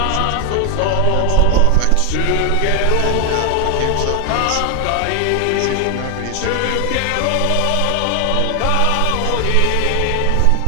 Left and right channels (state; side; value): different; both; correlation 0.00